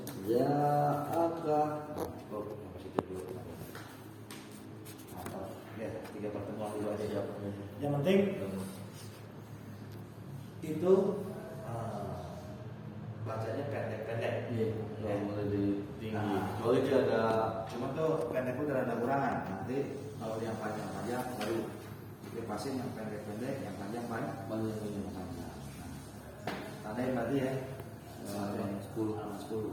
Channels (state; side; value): identical; both; correlation 1.00